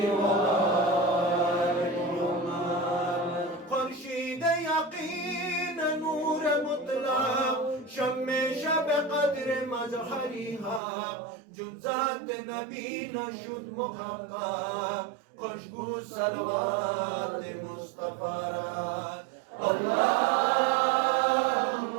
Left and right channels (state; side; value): drops out; left; at 10.8 s